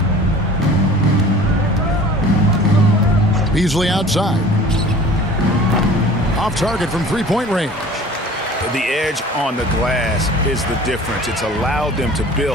Beasley outside. Off target from three-point range. The edge on the glass is the difference. It's allowed them to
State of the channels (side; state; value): both; normal; correlation 0.45